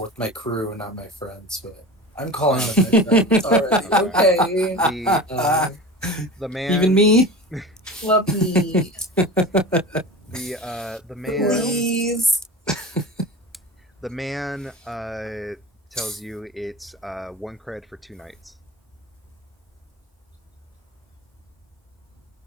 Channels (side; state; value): both; normal; correlation 0.33